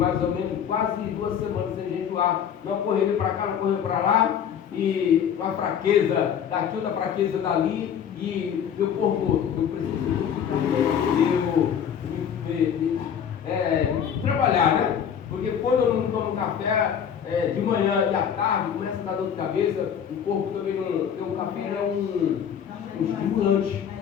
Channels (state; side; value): quieter; right; 8.4 dB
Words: ou menos quase 2 semanas sem jejuar. Não correu para cá, não correu para lá. E uma fraqueza daqui, outra fraqueza dali. E meu corpo, eu preciso trabalhar, né? Porque quando eu não tomo café de manhã e à tarde, começa a dar dor de cabeça, o corpo também não. O café é um estimulante.